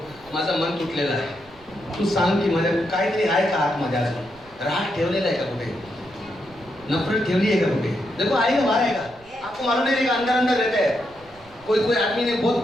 माझा मन तुटलेला आहे, तू सांग की माझ्या काहीतरी आहे का आतमध्ये अजून? राग ठेवलेला आहे का कुठे? नफरत ठेवली है का कुठे? देखो आएगा, बाहर आएगा, आपको मालूम नहीं रहेगा, अंदर अंदर रहता है। कोई आदमी ने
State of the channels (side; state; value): right; noise; rumble, 26 dB below the sound